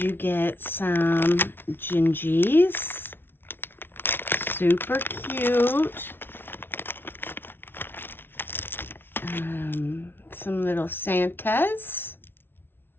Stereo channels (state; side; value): late; right; 0.11 ms